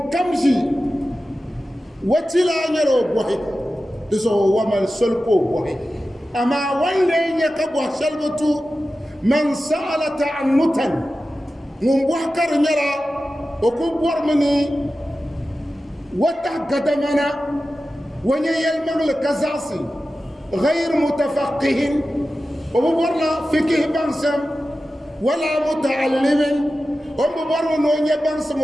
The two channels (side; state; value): both; normal; correlation 0.94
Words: كم شيء وتلا نيرو بوحي دسو ومن سلكو بوحي اما ولين يكبو سلبتو من سأل تعنتا من بوحكر نيرا وكبور مني وتحقدمنا وني يلمغل كزاسي غير متفقه ومبورنا فقه بانسم ولا متعلم ومبورنا نوني بانسم